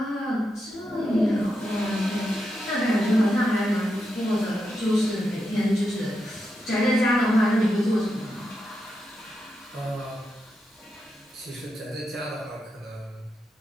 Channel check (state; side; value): normal; both; correlation 0.86